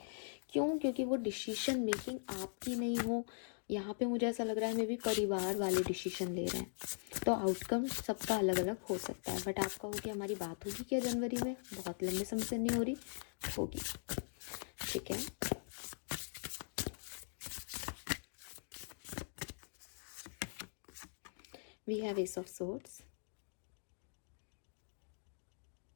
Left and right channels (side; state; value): right; silent; digital silence